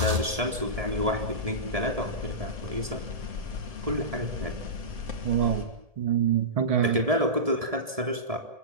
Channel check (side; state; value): left; late; 1.7 ms